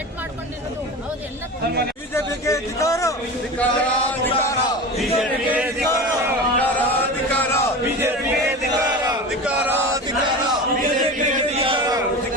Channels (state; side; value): normal; both; correlation 0.30